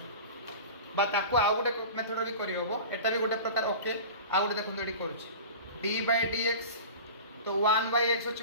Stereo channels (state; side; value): inverted; both; correlation -0.35